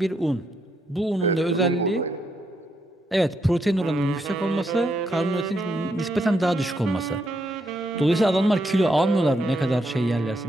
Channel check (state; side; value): normal; both; correlation 0.78